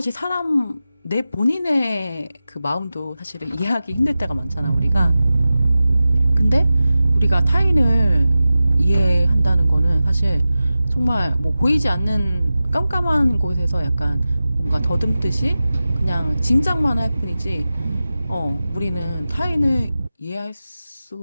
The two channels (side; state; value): both; inverted; correlation -0.94